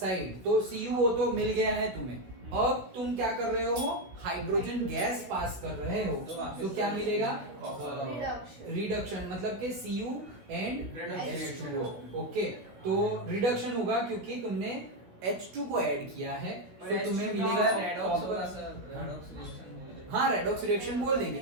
तो CuO तो मिल गया है तुम्हें, अब तुम क्या कर रहे हो? हाइड्रोजन गैस पास कर रहे हो, तो क्या मिलेगा? रिडक्शन, मतलब कि Cu एंड H2O। ओके, तो रिडक्शन होगा क्योंकि तुमने H2 को ऐड किया है, तो तुम्हें मिलेगा हाँ रेडॉक्स रिएक्शन बोल देंगे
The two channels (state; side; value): late; left; 16 ms